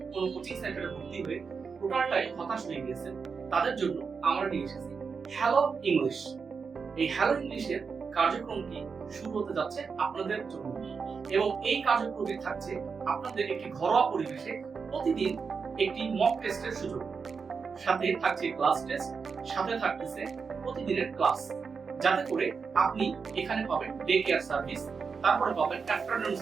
কোনো কোচিং সেন্টারে ভর্তি হয়ে টোটালটাই হতাশ হয়ে গিয়েছেন, তাদের জন্য আমরা নিয়ে এসেছি হ্যালো ইংলিশ। এই হ্যালো ইংলিশের কার্যক্রমটি শুরু হতে যাচ্ছে আপনাদের জন্য এবং এই কার্যক্রমটি থাকছে আপনাদের একটি ঘরোয়া পরিবেশে প্রতিদিন একটি মক টেস্টের সুযোগ, সাথে থাকছে ক্লাস টেস্ট, সাথে থাকতেছে প্রতিদিনের ক্লাস, যাতে করে আপনি এখানে পাবেন ডে কেয়ার সার্ভিস, তারপরে পাবেন আফটারনুন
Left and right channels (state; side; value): quieter; left; 5.5 dB